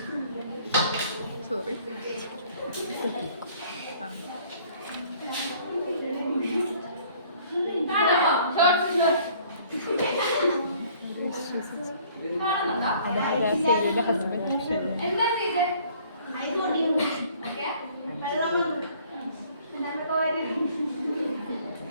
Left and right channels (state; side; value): inverted; both; correlation -0.56